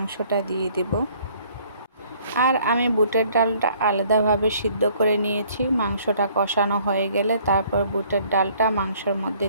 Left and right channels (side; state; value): both; inverted; correlation -0.59